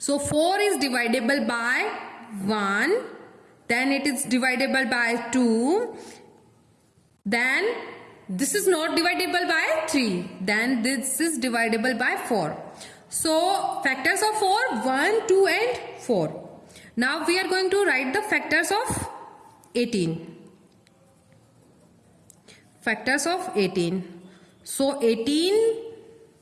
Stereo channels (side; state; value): both; identical; correlation 1.00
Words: 4 is divisible by 1, then it is divisible by 2, then this is not divisible by 3, then this is divisible by 4. So, factors of 4, 1, 2 and 4. Now, we are going to write the factors of 18. Factors of 18. So, 18